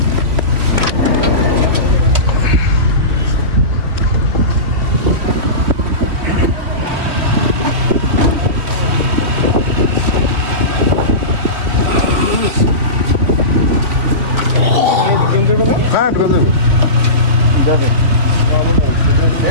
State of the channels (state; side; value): late; left; 2.9 ms